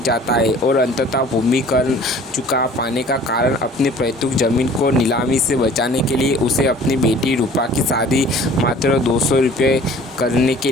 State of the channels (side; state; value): both; normal; correlation 0.49